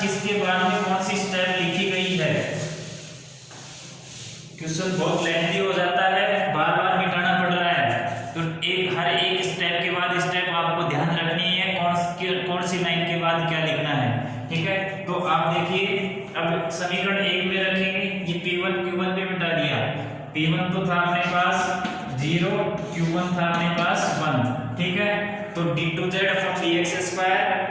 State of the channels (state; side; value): identical; both; correlation 1.00